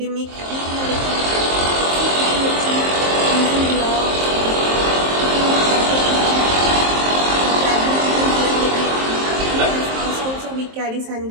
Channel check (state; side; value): late; left; 23 ms